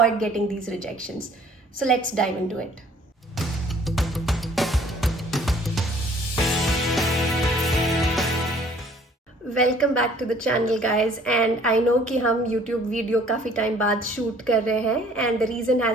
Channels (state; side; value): normal; both; correlation 0.56